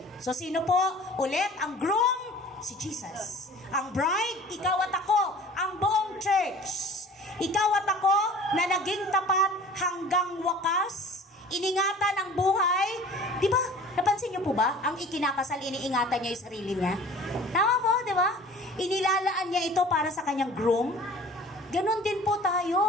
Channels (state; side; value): normal; both; correlation 0.45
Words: So, sino po? Ulit, ang groom, si Jesus. Ang bride, ikaw at ako, ang buong church. Ikaw at ako na naging tapat hanggang wakas, iningatan ang buhay. Di ba? Napansin niyo po ba? Ang ikinakasal, iniingatan niya yung sarili niya. Tama po, di ba? Inilalaan niya ito para sa kanyang groom. Ganon din po